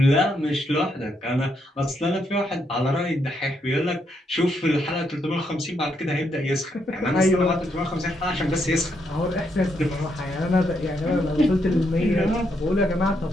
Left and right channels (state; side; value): normal; both; correlation 0.77